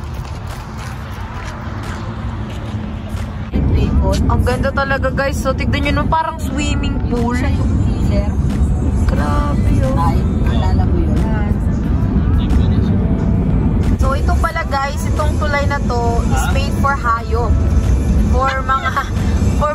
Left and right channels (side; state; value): both; identical; correlation 1.00